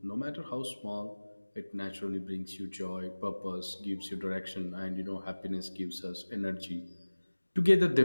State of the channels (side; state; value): both; inverted; correlation -1.00